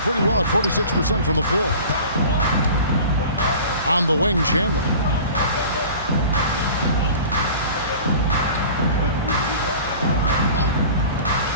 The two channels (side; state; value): both; inverted; correlation -0.41